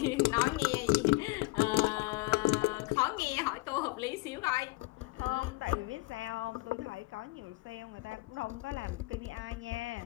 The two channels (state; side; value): quieter; right; 23.6 dB